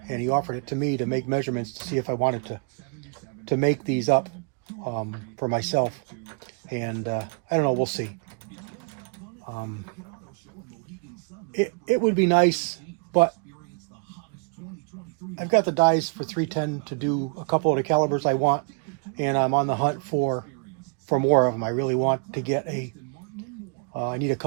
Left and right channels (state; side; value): quieter; left; 36.4 dB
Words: and he offered it to me to make measurements to see if I wanted to make these up for myself. And I don't know, we'll see. It would be nice, but I've got the dies for 310 to do a couple of the calibers I want, and I'm on the hunt for more of them. I really want to get I need a